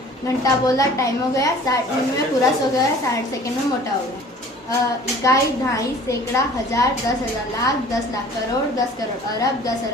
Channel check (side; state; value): both; normal; correlation 0.48